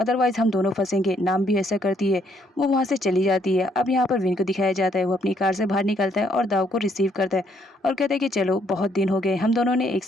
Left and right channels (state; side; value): normal; both; correlation 0.69